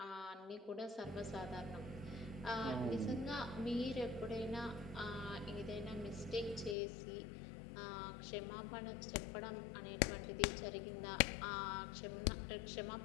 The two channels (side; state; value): right; drops out; at 6.8 s